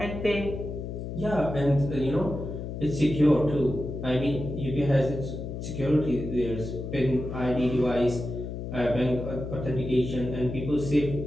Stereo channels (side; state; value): left; noise; hum, 6 dB below the sound